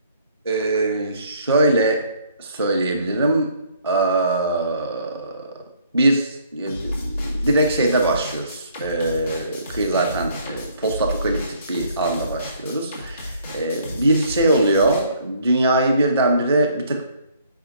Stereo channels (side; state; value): both; inverted; correlation -0.62